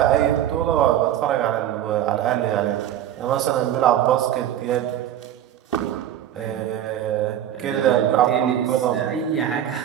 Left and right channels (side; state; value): left; quieter; 11.2 dB